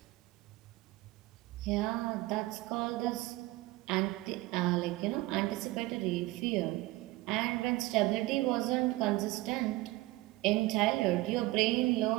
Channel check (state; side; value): quieter; left; 19.5 dB